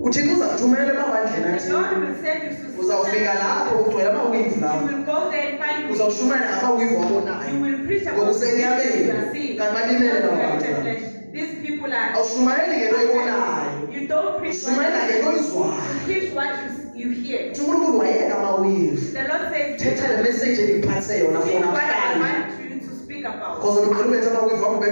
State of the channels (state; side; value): inverted; both; correlation -1.00